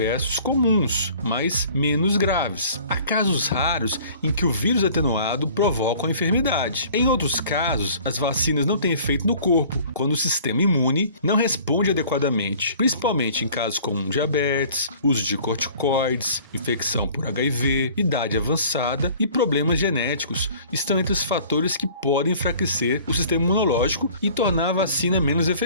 comuns, mas menos graves. Há casos raros em que o vírus atenuado provoca a enfermidade. Em outros casos, as vacinas não têm efeito no corpo, quando o sistema imune não responde adequadamente, principalmente em casos como diabetes, uso de corticoides, infecção por HIV, idade avançada e problemas genéticos estão entre os fatores que podem enfraquecer o sistema imunológico e tornar a vacina menos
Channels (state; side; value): inverted; both; correlation -0.50